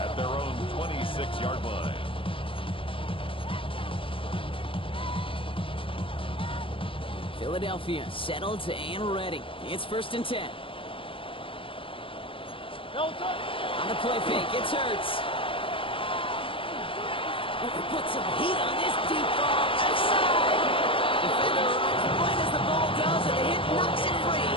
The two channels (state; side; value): late; right; 0.26 ms